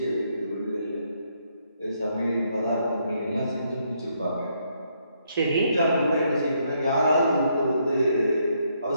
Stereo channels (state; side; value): inverted; both; correlation -0.74